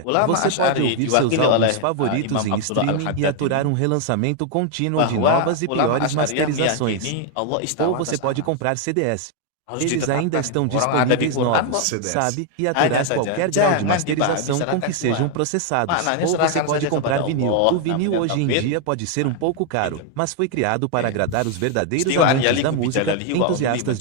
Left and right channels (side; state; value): both; different; correlation 0.00